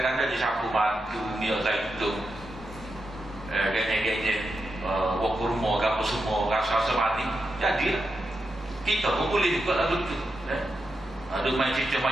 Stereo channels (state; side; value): normal; both; correlation 0.87